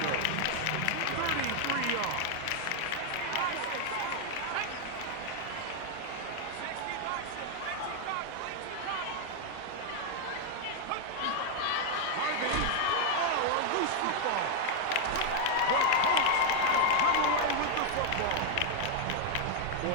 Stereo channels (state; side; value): different; both; correlation 0.00